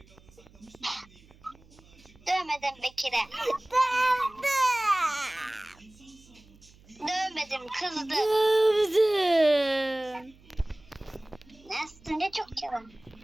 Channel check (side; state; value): right; noise; hum, 26 dB below the sound